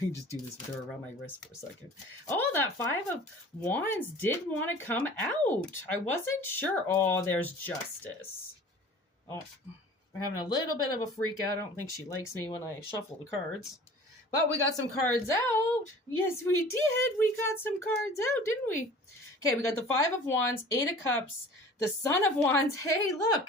just do this with her around my wrist for a second. Oh, that 5 of Wands did want to come out. I wasn't sure. Oh, there's Justice. Oh, we're having a little bit of a freak out. I don't think she likes me when I shuffle the cards. But we got some cards out. Yes, we did. We got some cards out, didn't we? Okay, we got the 5 of Wands, 8 of Cups, the Son of Wands. Hey, look.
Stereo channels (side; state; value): both; normal; correlation 0.44